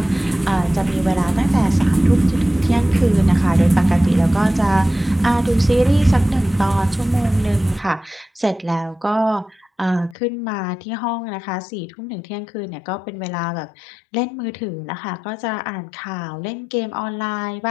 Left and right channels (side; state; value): right; drops out; at 10.2 s